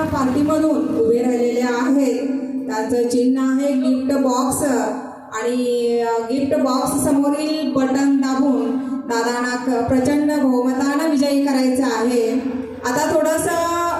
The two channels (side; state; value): both; identical; correlation 1.00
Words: पार्टीमधून उभे राहिलेले आहेत. त्यांचं चिन्ह आहे गिफ्ट बॉक्स आणि गिफ्ट बॉक्स समोरील बटन दाबून दादांना प्रचंड बहुमतानं विजयी करायचं आहे. आता